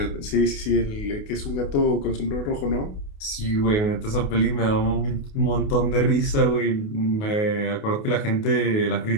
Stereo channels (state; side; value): late; right; 28 ms